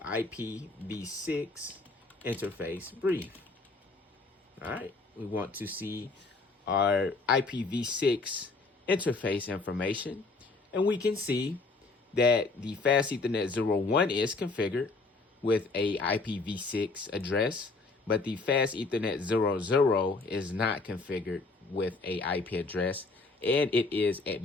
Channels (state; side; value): quieter; right; 3.7 dB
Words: IPv6 interface brief. All right, we want to see our IPv6 interface information. And we can see that the fast Ethernet 01 is configured with a IPv6 address, but the fast Ethernet 00 is not configured with a IP address, and it is